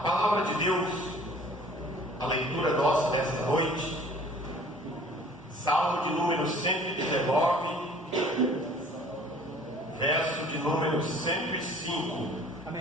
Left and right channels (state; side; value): normal; both; correlation 0.51